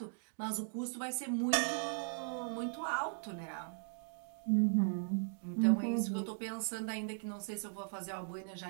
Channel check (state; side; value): silent; left; digital silence